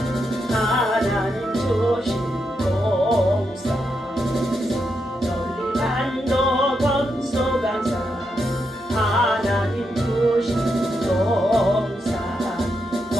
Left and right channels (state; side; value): normal; both; correlation 0.83